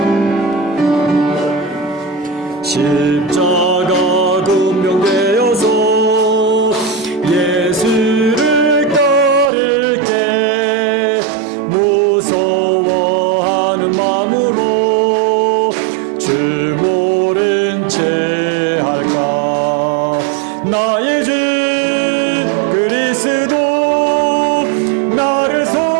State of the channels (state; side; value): drops out; left; at 9.5 s